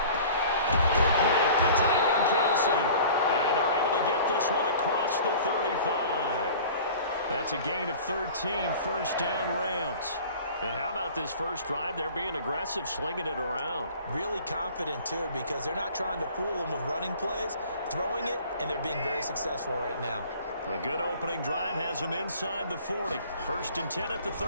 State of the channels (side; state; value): both; inverted; correlation -0.45